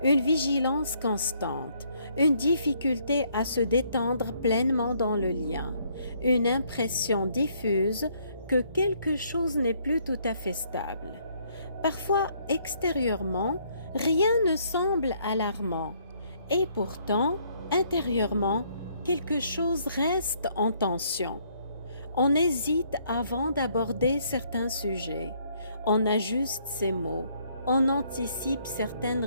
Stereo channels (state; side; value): inverted; both; correlation -0.67